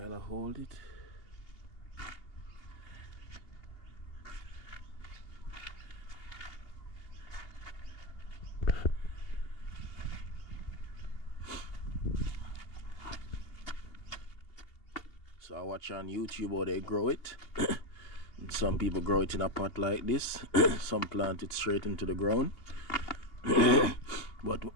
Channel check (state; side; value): late; right; 2.8 ms